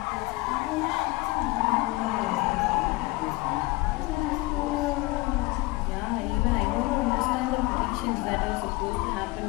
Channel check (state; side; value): quieter; right; 22.6 dB